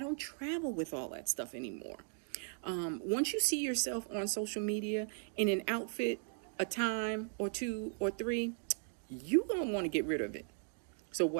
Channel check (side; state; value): left; silent; 53 dB below the other